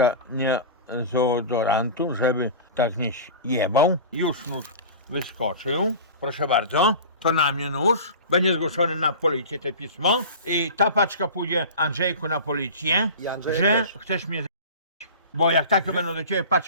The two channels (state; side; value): inverted; both; correlation -0.34